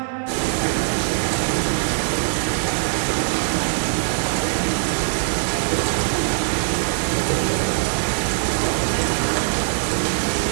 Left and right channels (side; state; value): left; silent; 65 dB below the other